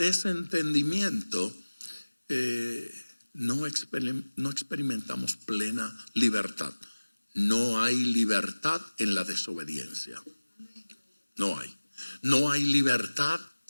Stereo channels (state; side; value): inverted; both; correlation -1.00